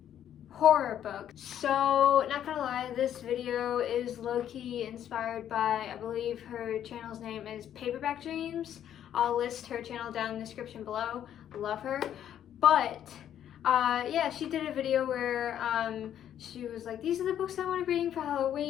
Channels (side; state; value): right; quieter; 10.3 dB